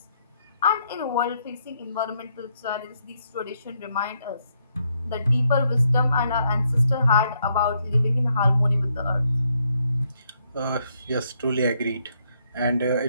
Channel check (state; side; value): inverted; both; correlation -0.75